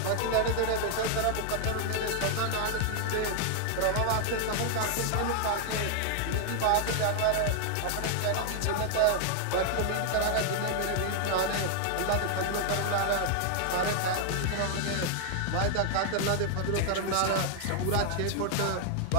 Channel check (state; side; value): different; both; correlation 0.00